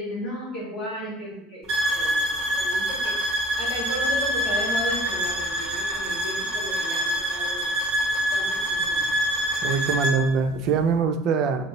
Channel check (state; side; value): normal; both; correlation 0.50